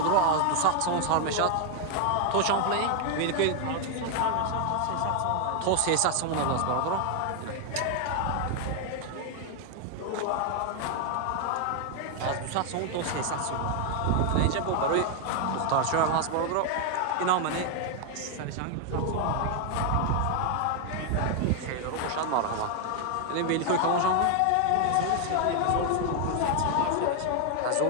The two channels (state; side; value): different; both; correlation 0.00